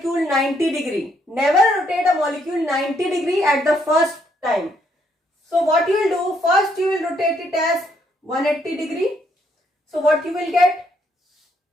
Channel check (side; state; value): both; normal; correlation 0.72